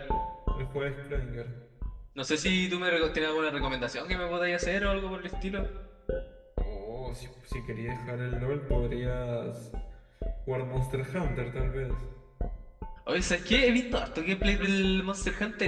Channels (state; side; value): identical; both; correlation 1.00